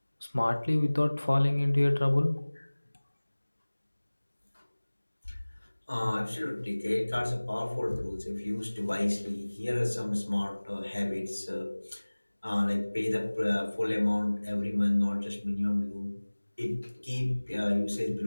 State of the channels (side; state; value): both; inverted; correlation -1.00